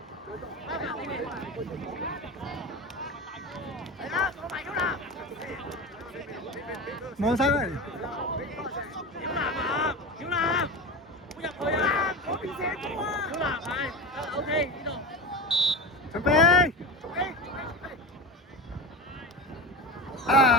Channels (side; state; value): both; normal; correlation 0.27